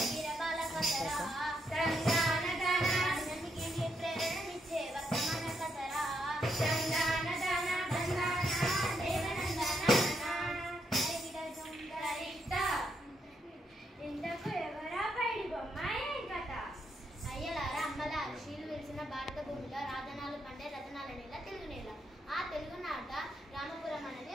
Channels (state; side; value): normal; both; correlation 0.79